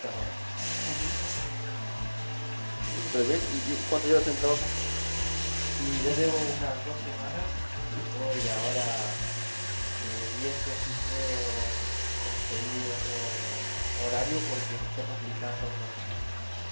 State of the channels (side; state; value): both; inverted; correlation -1.00